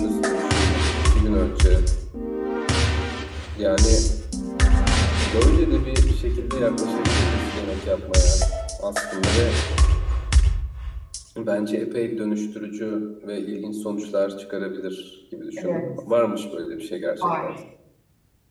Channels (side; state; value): both; identical; correlation 1.00